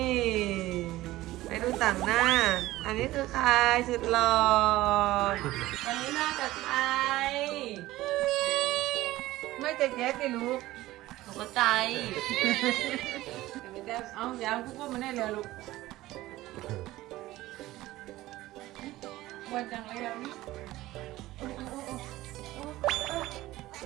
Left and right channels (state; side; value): quieter; left; 16.8 dB